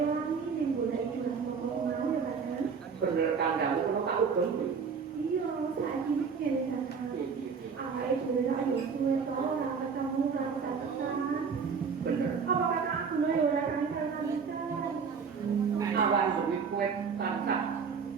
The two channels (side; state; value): left; quieter; 5.9 dB